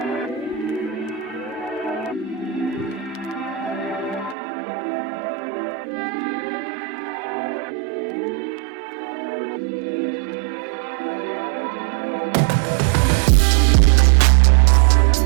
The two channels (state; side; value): drops out; left; at 4.4 s